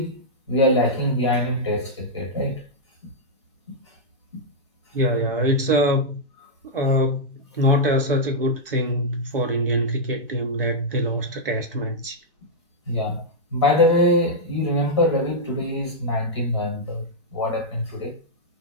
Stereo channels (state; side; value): normal; both; correlation -0.07